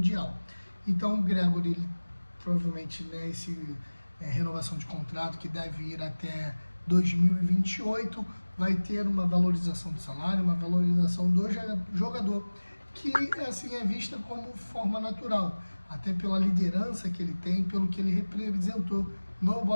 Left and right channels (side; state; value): both; inverted; correlation -1.00